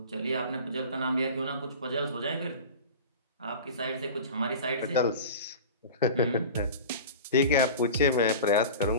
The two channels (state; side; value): inverted; both; correlation -0.34